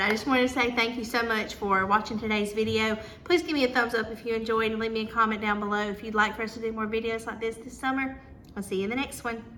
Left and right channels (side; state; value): both; identical; correlation 1.00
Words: I just wanted to say thank you so much for watching today's video. Please give me a thumbs up if you enjoyed and leave me a comment down below if you'd like for us to do more videos like this summer. I'll see you in the next one.